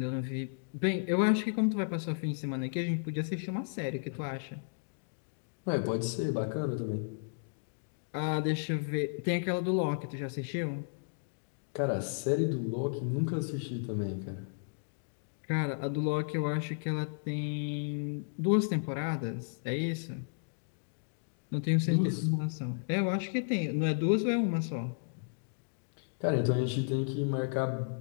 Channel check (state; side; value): silent; right; digital silence